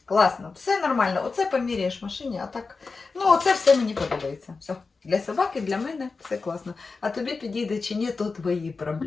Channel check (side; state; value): right; quieter; 4.3 dB